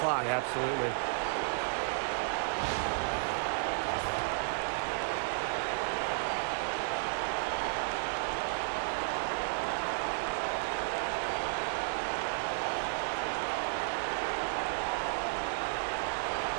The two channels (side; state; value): left; silent; digital silence